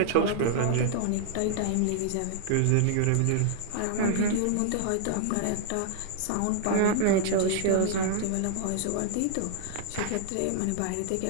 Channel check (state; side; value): different; both; correlation -0.01